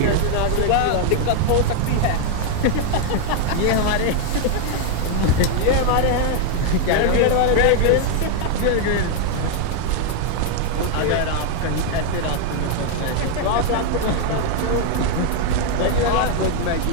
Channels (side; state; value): both; different; correlation 0.00